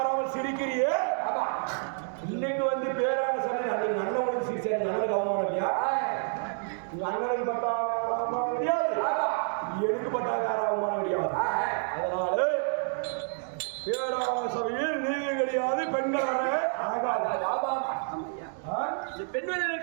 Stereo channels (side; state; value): left; silent; 59 dB below the other